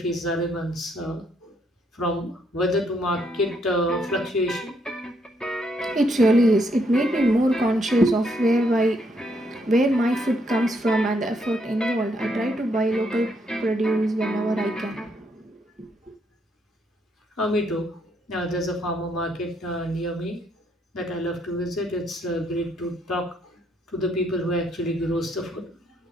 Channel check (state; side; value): normal; both; correlation 0.73